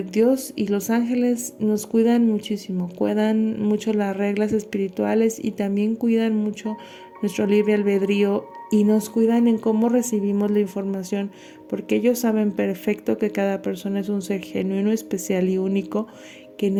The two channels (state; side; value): identical; both; correlation 1.00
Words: Dios y los ángeles nos cuidan muchísimo, cuidan mucho las reglas espirituales y también cuidan mucho nuestro libre albedrío y nos cuidan en cómo recibimos la información, porque ellos saben perfecto que cada persona es un ser genuino, especial y único que